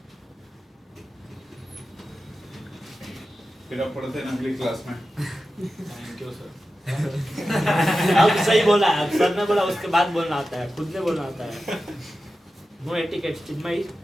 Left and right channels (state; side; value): normal; both; correlation 0.93